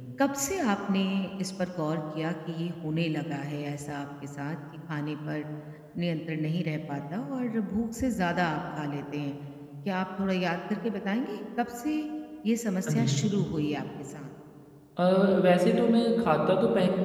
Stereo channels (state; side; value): identical; both; correlation 1.00